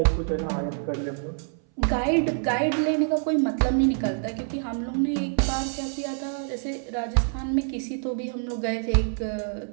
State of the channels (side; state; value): left; silent; 58 dB below the other